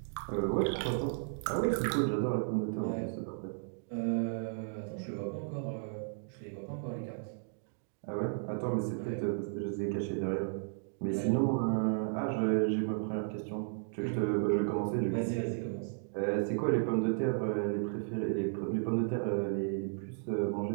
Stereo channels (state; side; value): silent; left; digital silence